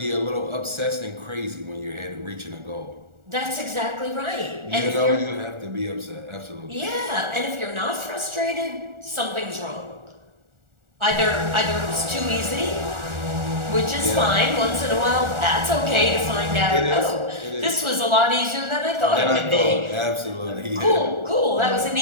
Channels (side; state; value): left; late; 1.4 ms